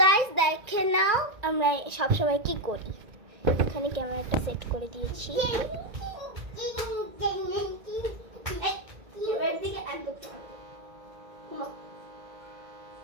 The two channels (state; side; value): late; left; 1.8 ms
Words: গাইস দেখে নাও আমরা সবসময় কি করি। এখানে ক্যামেরাটা সেট করে দিয়েছি।